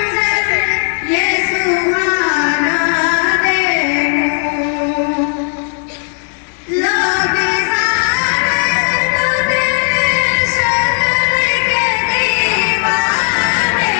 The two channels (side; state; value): right; silent; 57 dB below the other